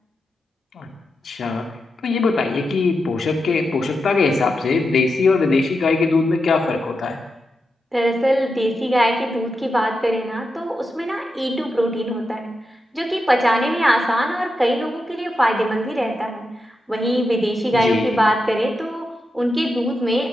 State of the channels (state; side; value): normal; both; correlation 0.88